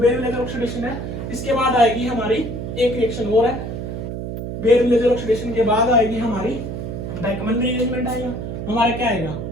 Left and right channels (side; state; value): right; noise; hum, 6 dB below the sound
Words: विलेजर ऑक्सीडेशन है, इसके बाद आएगी हमारी एक रिएक्शन और है, बेयर विलेजर ऑक्सीडेशन के बाद आएगी हमारी बैकमन रीअरेंजमेंट आएगा। हमारा क्या आएगा,